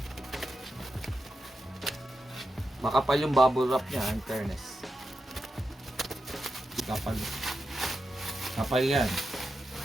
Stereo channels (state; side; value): normal; both; correlation 0.88